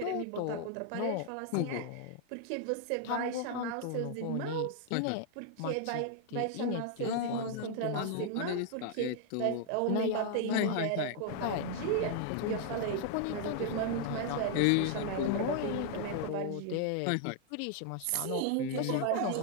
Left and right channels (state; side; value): different; both; correlation 0.00